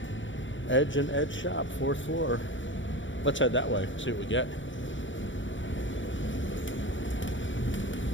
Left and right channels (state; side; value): late; right; 0.56 ms